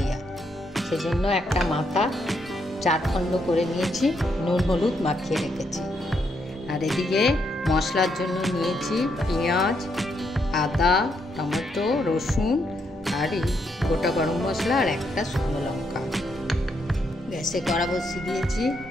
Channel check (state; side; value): normal; both; correlation 0.77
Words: সেজন্য একটা মাথা 4 খণ্ড করে নিয়েছি, নুন হলুদ মাখিয়ে রেখেছি। আর এদিকে মশলার জন্য নিয়েছি পেঁয়াজ, আদা, টমেটো, রসুন আর এই গোটা গরম মশলা আর একটা শুকনো লঙ্কা। গ্যাসে কড়া বসিয়ে দিয়েছি,